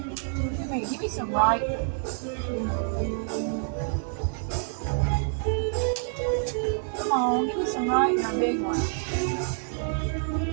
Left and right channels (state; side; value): silent; left; 60 dB below the other